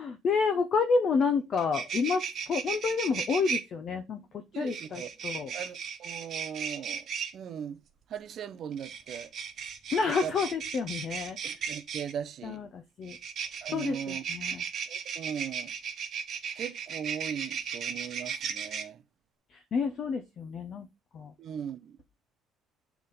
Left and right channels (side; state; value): both; normal; correlation 0.67